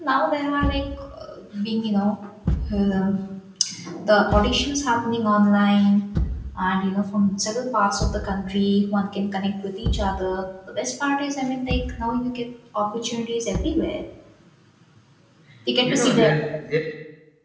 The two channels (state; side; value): identical; both; correlation 1.00